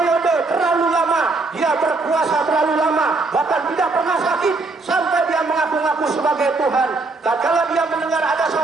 terlalu lama dia berkuasa, terlalu lama, bahkan tidak pernah sakit sampai dia mengaku-ngaku sebagai Tuhan. Tatkala dia mendengar ada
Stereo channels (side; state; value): left; quieter; 3.6 dB